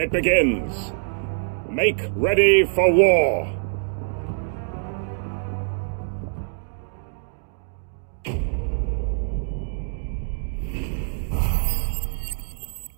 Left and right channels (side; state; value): left; silent; digital silence